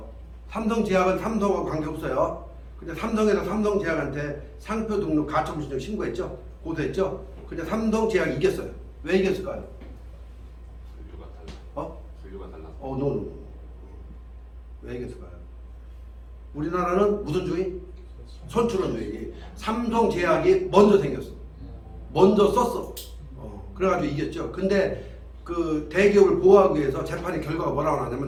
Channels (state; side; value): identical; both; correlation 1.00